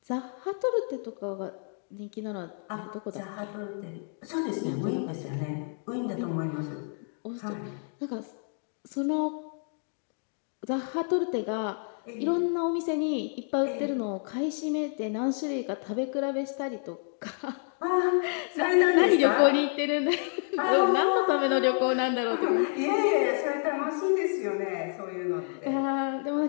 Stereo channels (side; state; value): right; silent; 55 dB below the other